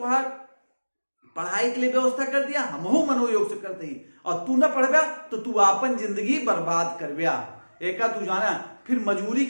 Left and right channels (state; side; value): inverted; both; correlation -1.00